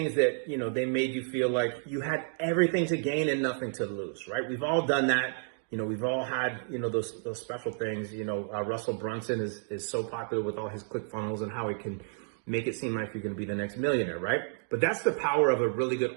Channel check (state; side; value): silent; left; digital silence